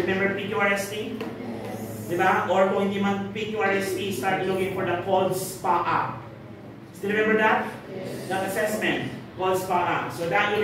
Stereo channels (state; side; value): identical; both; correlation 1.00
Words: PQRST? Yes. Diba? Or kung hindi man PQRST, start looking for the cold SPA. Still remember that? Yes. That assessment, cold SPA. So that will